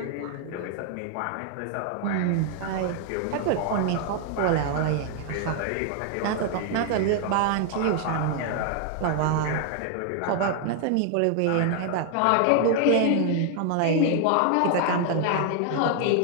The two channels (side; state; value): both; different; correlation 0.00